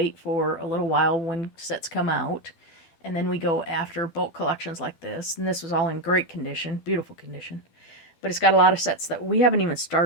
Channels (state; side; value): late; right; 12 ms